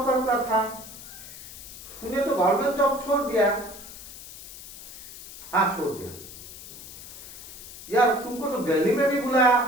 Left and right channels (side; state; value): left; noise; hiss, 14 dB below the sound